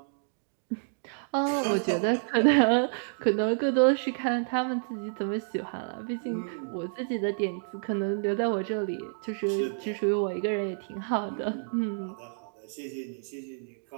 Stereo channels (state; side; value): silent; left; digital silence